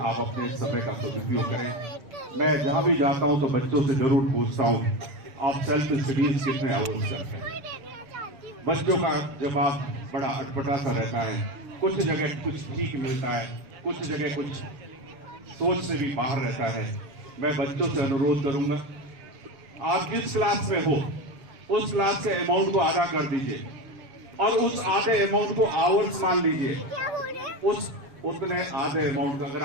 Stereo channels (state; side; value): late; left; 6.9 ms